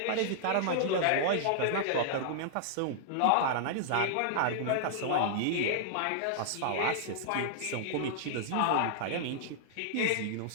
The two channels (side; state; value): both; different; correlation -0.01